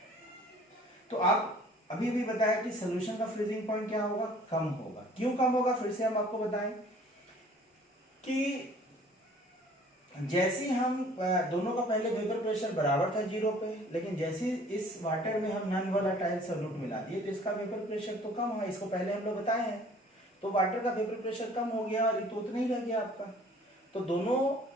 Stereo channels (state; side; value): normal; both; correlation 0.53